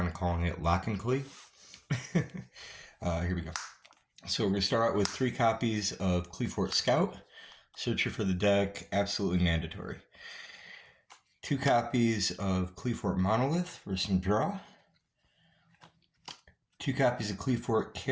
of calling it Lock and Qli. Here we go. So we're going to start out with 3 copies of Qliphort Scout. Searcher for the deck, absolutely mandatory. 2 copies of Qliphort Monolith for some draw. 2 copies of Qliphort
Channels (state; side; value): identical; both; correlation 1.00